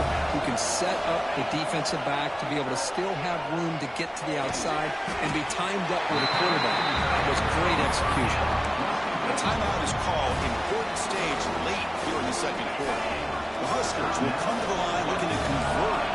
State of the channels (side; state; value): both; identical; correlation 1.00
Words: who can set up the defensive back to be able to still have room to get to the outside and be timed up with a quarterback. That was great execution. A timeout is called. Important stage late here in the second quarter. The Huskers will come to the line looking to convert